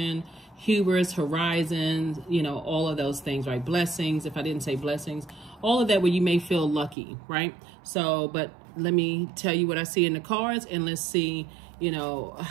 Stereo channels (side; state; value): left; drops out; at 7.0 s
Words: hubris, horizons, all of those things, right? Blessings, if I didn't say blessings, all of that where you may feel lucky, right? So, but let me tell you what I see in the cards, and let's see,